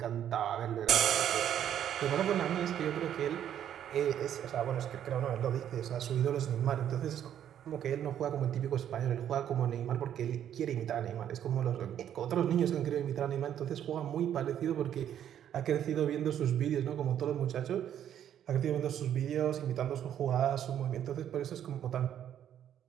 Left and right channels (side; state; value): left; quieter; 10.1 dB